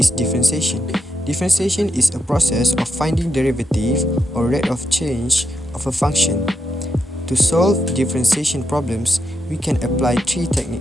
differentiation? Differentiation is a process of finding derivative or rate of change of a function. To solve differentiation problems, we can apply three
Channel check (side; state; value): both; normal; correlation 0.83